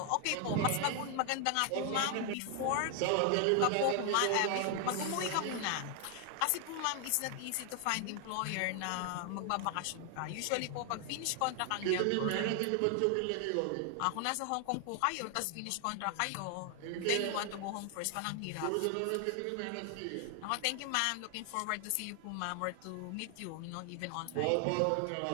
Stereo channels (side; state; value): both; different; correlation 0.00